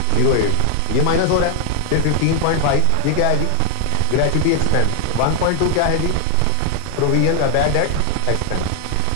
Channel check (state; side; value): different; both; correlation 0.00